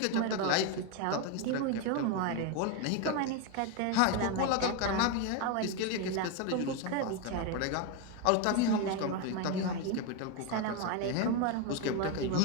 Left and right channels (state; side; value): different; both; correlation 0.02